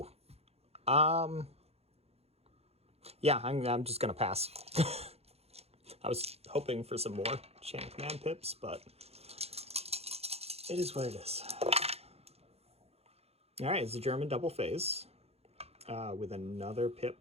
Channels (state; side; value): late; left; 0.30 ms